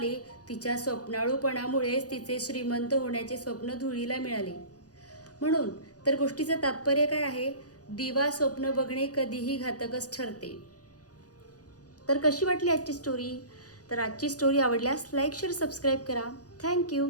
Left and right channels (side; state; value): right; late; 0.67 ms